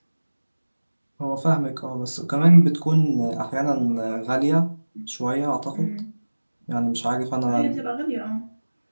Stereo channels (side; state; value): both; inverted; correlation -1.00